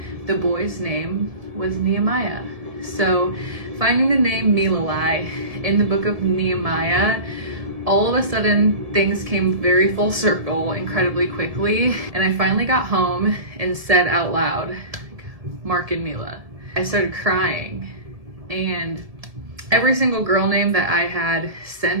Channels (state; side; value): late; left; 1.7 ms